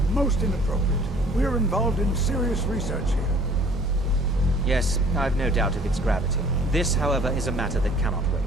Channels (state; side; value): normal; both; correlation 0.54